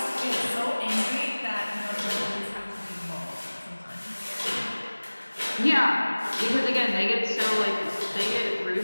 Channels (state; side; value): inverted; both; correlation -1.00